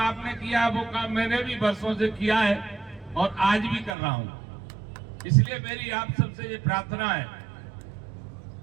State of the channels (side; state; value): left; drops out; at 4.0 s